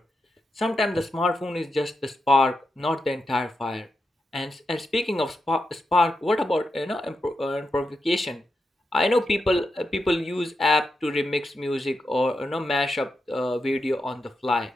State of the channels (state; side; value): normal; both; correlation 0.87